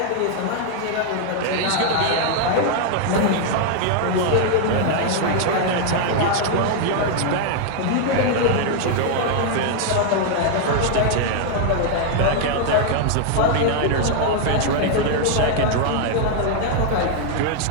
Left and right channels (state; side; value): different; both; correlation 0.00